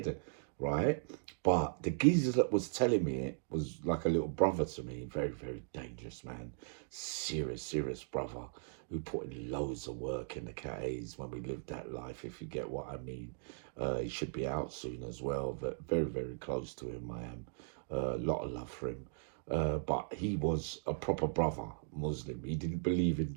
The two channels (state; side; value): silent; left; digital silence